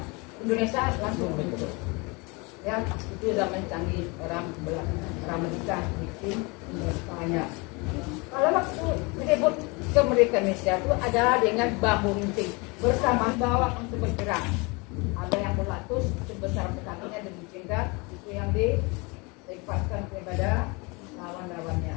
Indonesia langsung bentuk, ya, itu zaman canggih, orang menikah bikin Indonesia. Kalau waktu merebut kemerdekaan Indonesia itu adalah dengan bambu runcing bersama bawah untuk bergerak. Ada yang berlatus sebesar kakinya dan jingkat, itu yang dilepaskan kepada lawan-lawannya.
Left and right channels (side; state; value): right; quieter; 28.1 dB